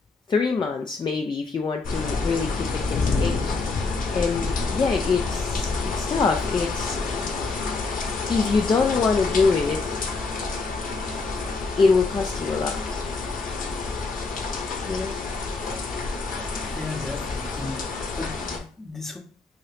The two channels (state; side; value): quieter; right; 4.0 dB